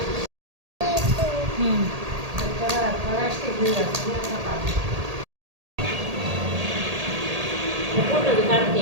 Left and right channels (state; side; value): late; left; 1.8 ms